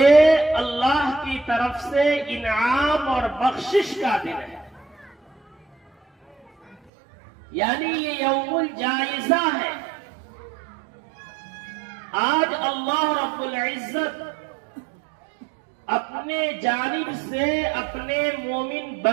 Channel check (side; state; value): left; drops out; at 6.8 s